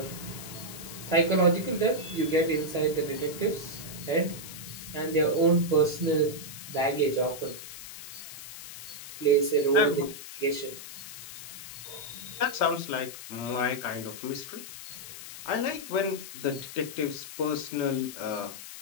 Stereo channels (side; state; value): left; noise; hiss, 12 dB below the sound